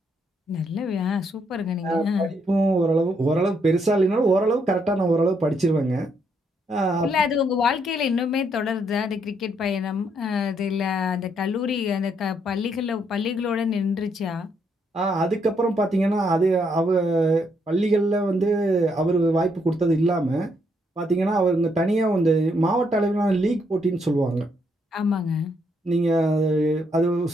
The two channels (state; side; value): normal; both; correlation 0.74